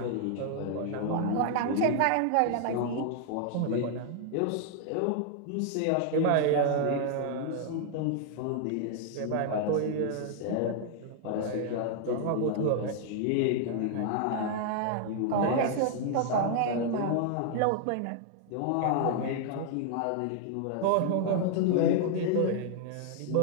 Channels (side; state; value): both; different; correlation 0.00